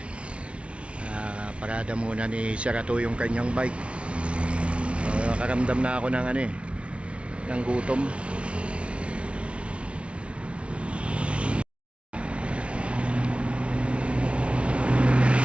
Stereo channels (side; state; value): left; late; 0.060 ms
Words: Parada muna ni Serato yung kanyang bike. Nakaramdam na ako ng ng gutom.